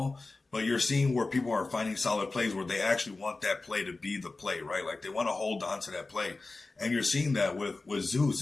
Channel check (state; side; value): quieter; right; 3.5 dB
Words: But you're seeing where people are finding solid plays where they actually want that play to be the play, right? Like they want to hold on to that play. And you're seeing that with Zeus.